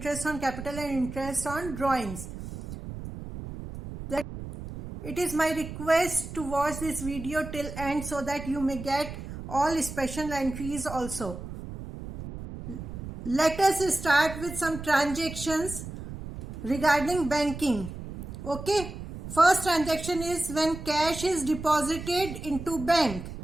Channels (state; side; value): noise; right; rumble, 10 dB below the sound